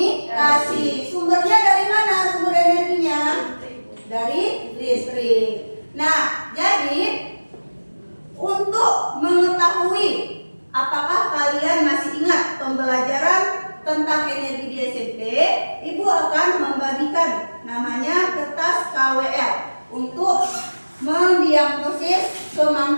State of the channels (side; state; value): both; inverted; correlation -1.00